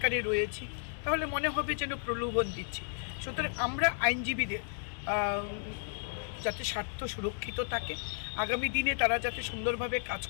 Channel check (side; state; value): right; silent; digital silence